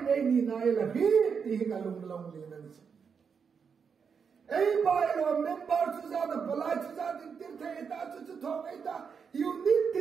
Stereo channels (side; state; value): left; quieter; 6.2 dB